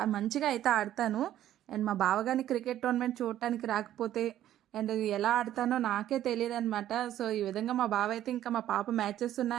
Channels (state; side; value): quieter; left; 12.3 dB